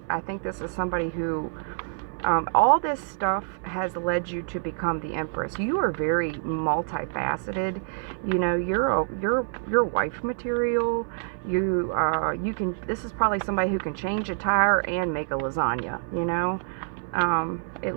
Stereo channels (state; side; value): silent; left; 60 dB below the other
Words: I think this is somebody who, all this stuff has led you to become the Empress. You are very multifaceted. You know, you're wife material. You can. This is probably somebody who can change a tire and make a lasagna. You know,